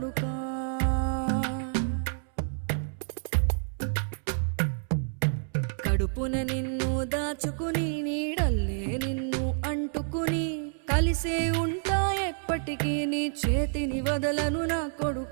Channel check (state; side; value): silent; left; 59 dB below the other